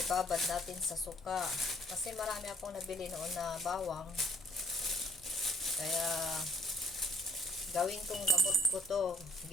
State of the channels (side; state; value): both; normal; correlation 0.60